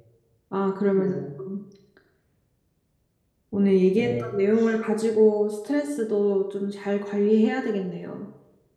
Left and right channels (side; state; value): both; identical; correlation 1.00